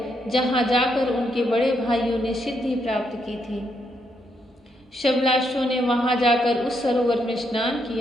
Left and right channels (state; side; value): normal; both; correlation 0.77